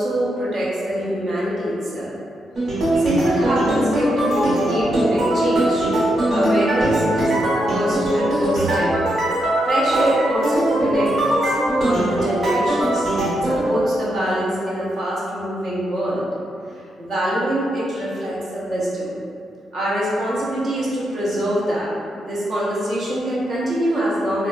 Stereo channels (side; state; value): both; normal; correlation 0.82